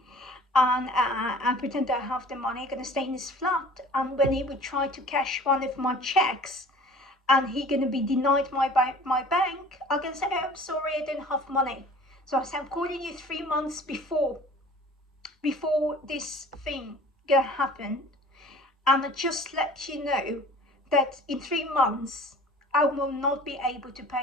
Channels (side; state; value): both; normal; correlation 0.46